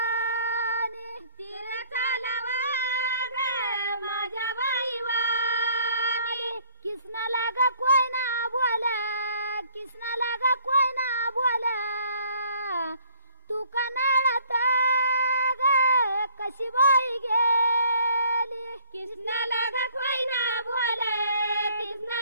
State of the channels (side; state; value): both; inverted; correlation -0.59